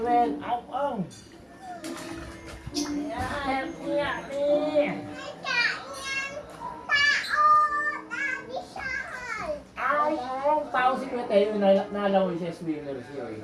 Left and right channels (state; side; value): identical; both; correlation 1.00